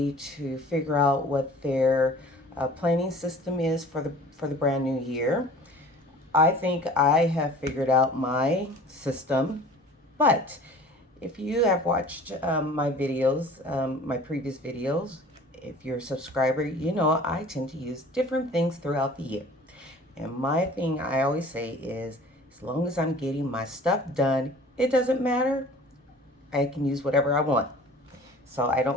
to figure out what their planning system is for the brand new year. I think I have figured out my system, but if you have watched my videos, my previous videos, if you're a subscriber, you know I tend to use different things throughout the year. And my thing I always say is, as long as I'm getting my stuff done, it doesn't matter. I can use whatever I want. So I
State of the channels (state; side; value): normal; both; correlation 0.46